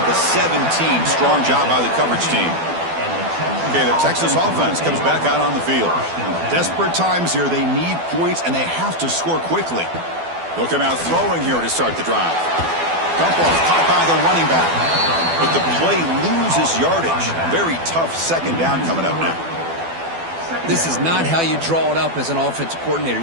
the 17. Strong job by the coverage team. Okay, the Texas offense comes back out on the field. Desperate times here. They need points, and they have to score quickly. They'll come out throwing here to start the drive. Dump off caught by the running back. But the play loses yardage. Very tough second down coming up now. This is not how you draw it up as an offensive coordinator.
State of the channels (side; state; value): left; late; 12 ms